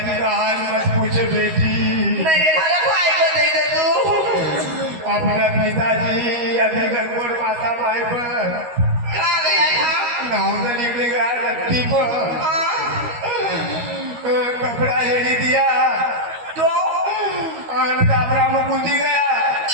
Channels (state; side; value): late; left; 13 ms